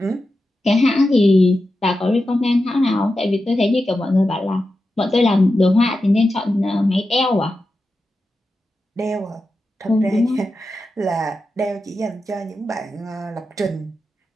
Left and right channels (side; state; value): both; normal; correlation 0.91